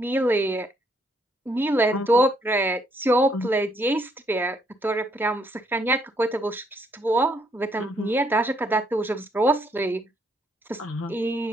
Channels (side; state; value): both; normal; correlation 0.71